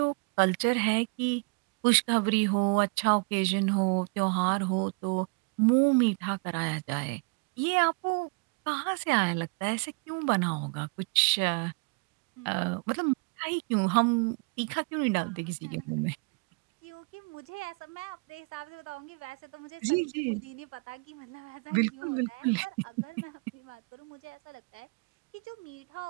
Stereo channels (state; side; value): quieter; left; 32.7 dB